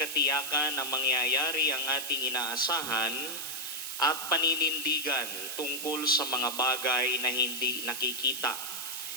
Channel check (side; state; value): right; noise; hiss, 5 dB below the sound